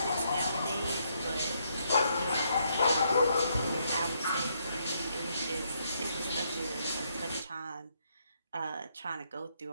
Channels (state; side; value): inverted; both; correlation -0.75